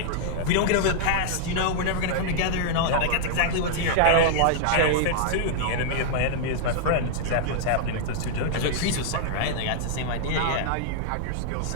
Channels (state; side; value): different; both; correlation -0.01